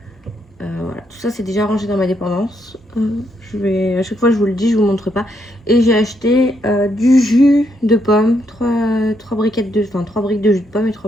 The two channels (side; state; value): both; normal; correlation 0.76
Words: Voilà, tout ça c'est déjà rangé dans ma dépendance. À chaque fois je vous le dis, je vous montre pas. Et j'ai acheté du jus de pomme, 3 briques de jus de pomme et